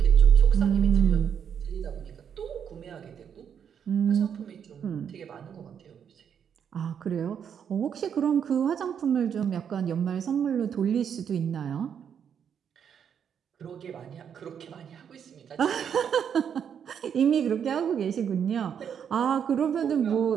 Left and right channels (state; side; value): quieter; left; 8.0 dB